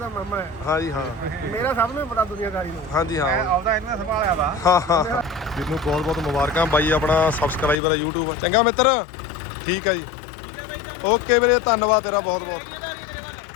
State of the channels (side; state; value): right; drops out; at 7.8 s